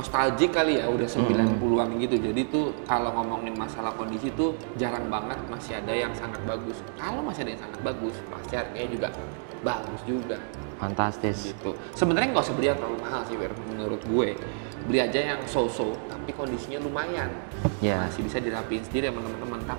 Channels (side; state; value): left; silent; digital silence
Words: kali ya, udah 90-an gitu. Jadi tuh kalau ngomongin masalah kondisi tuh jarang banget masih ada yang sangat bagus. Kalau masih ada yang sangat bagus, pasti harganya juga bagus juga. Fantastis Gitu. Sebenarnya nggak usah beli yang terlalu mahal sih, Wir, menurut gue. Beli aja yang so-so, tapi kondisinya lumayan. Yeah. Masih bisa dirapiin sendiri sama teman-teman.